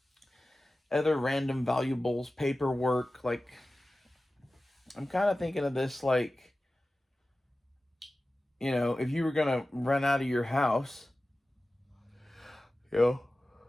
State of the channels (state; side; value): normal; both; correlation 0.96